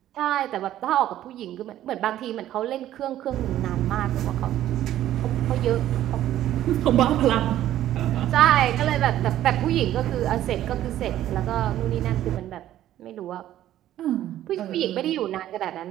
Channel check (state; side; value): quieter; left; 12.7 dB